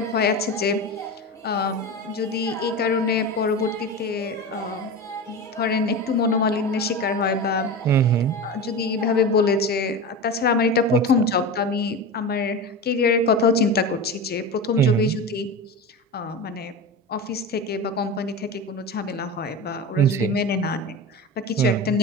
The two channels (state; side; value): normal; both; correlation 0.26